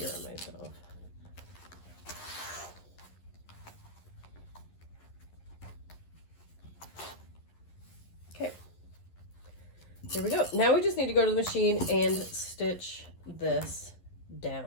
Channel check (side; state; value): right; late; 11 ms